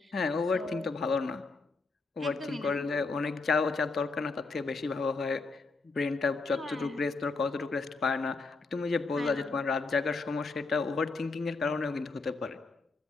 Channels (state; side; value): quieter; right; 3.9 dB